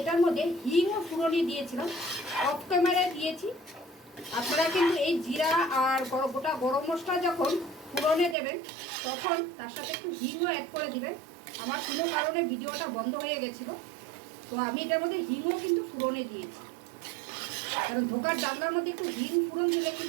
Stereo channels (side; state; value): left; drops out; at 8.3 s